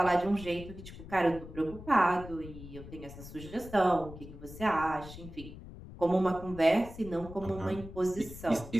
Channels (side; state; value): left; noise; rumble, 14 dB below the sound